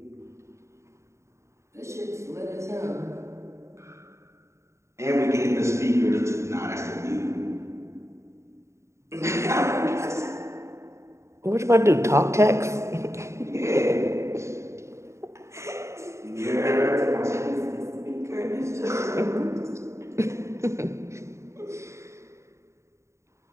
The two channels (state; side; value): late; left; 0.14 ms